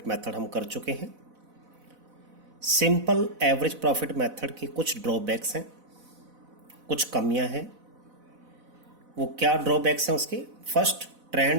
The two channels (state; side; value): late; left; 4.0 ms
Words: method हम कर चुके हैं। सिंपल एवरेज प्रॉफिट मेथड की कुछ ड्रॉबैक्स हैं, कुछ कमियां हैं। वो क्या ड्रॉबैक्स हैं उसके? First,